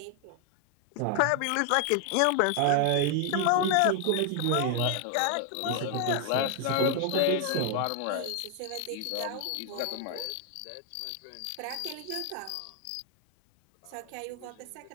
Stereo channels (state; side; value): different; both; correlation 0.00